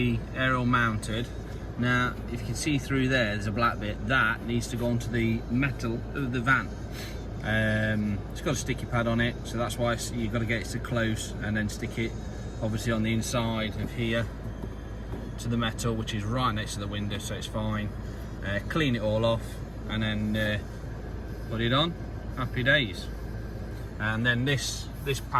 aerial mounted. Now, if you can see through there's a black bit. That needs to go onto the metal of the van. It's got a sticky pad on it, so that's why you've got to get it to close and then stick it obviously on the inside of here to the metal, which is right next to the window, so it's fine. Clean it all off and then put it on. Happy days. And then this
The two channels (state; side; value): identical; both; correlation 1.00